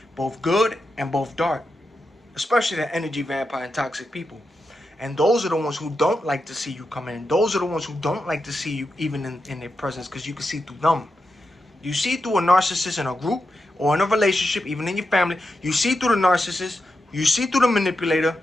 both good and both dark, especially the energy vampire and toxic people. And those are the ones who don't like to see you come in. Those are the ones who don't like to see you even in their presence, because you can see through them. You see through a narcissist in a group or in a relationship, even in your family. You see through the narcissist, you see through the manipulator,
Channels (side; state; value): both; normal; correlation 0.88